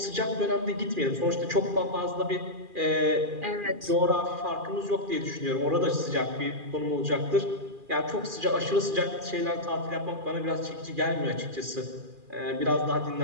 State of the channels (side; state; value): left; late; 2.4 ms